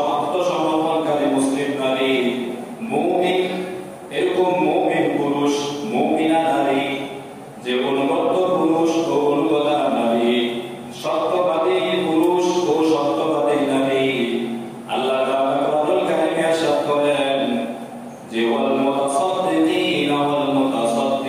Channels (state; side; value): identical; both; correlation 1.00